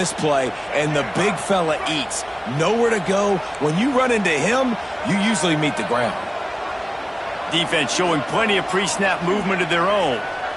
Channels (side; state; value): both; identical; correlation 1.00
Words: play, and the big fella eats. Nowhere to go. When you run into him, you usually meet the ground. Defense showing plenty of pre-snap movement of their own.